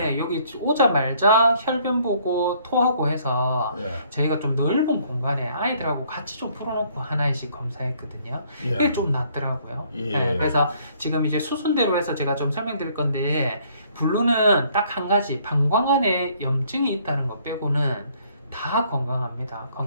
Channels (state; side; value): inverted; both; correlation -0.63